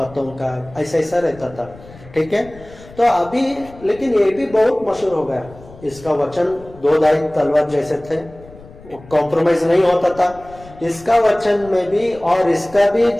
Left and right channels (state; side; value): noise; left; rumble, 20 dB below the sound